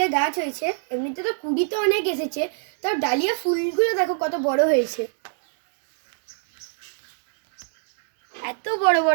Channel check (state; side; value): silent; left; 63 dB below the other